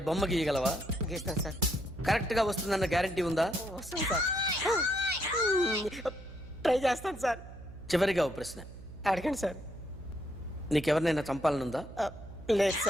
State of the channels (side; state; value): right; noise; hum, 15 dB below the sound